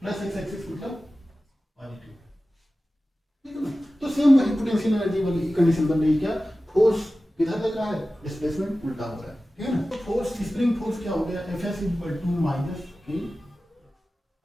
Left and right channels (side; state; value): both; normal; correlation 0.95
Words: एक्स एक्सिस मतलब पॉजिटिव। ठीक है ना, तो सेम वही पोटेंशियल एनर्जी वाली कंडीशन बन रही है, क्या फोर्स किधर लग रहा है, डिस्प्लेसमेंट उल्टा हो रहा है। ठीक है ना, तो फोर्स स्प्रिंग फोर्स क्या हो गया, Fs equal to minus k,